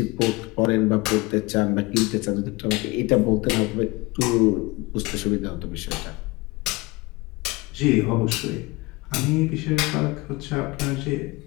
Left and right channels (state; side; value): quieter; right; 23.4 dB